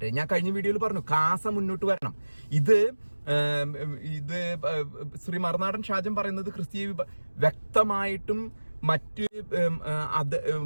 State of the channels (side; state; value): both; inverted; correlation -1.00